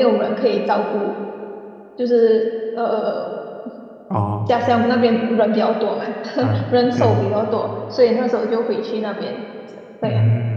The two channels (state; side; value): identical; both; correlation 1.00